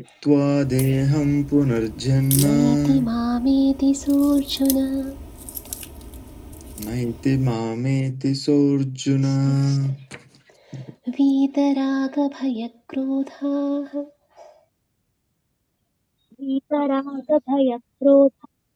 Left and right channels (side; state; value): both; identical; correlation 1.00